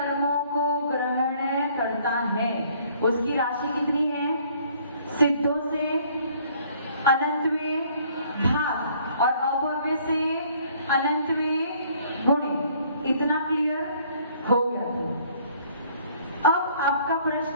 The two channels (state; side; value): inverted; both; correlation -0.60